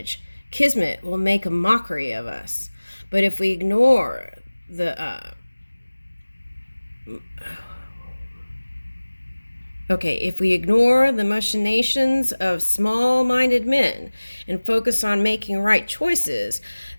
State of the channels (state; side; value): inverted; both; correlation -1.00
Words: Kismet will make a mockery of us. But if we ignore the if we ignore the machinations of small-minded men and focus on making right choices,